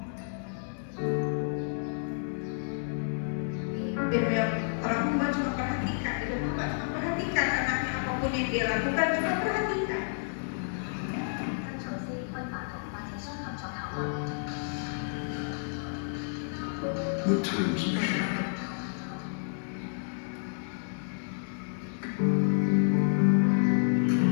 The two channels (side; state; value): right; silent; 58 dB below the other